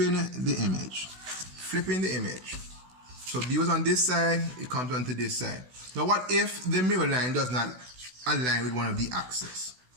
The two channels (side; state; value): left; late; 16 ms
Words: the image. Flipping the image. So B was on this side, it comes onto this side. Now what if the mirror line does not align with one of the axes?